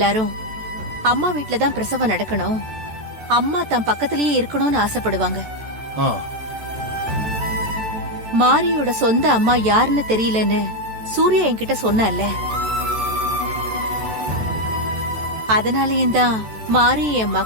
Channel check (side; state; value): left; late; 14 ms